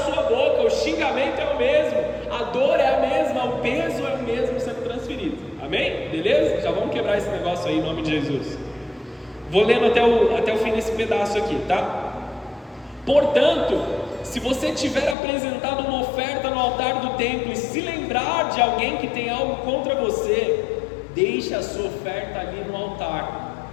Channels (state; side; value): drops out; right; at 15.2 s